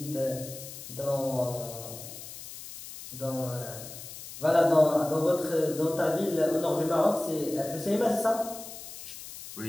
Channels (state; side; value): noise; left; hiss, 12 dB below the sound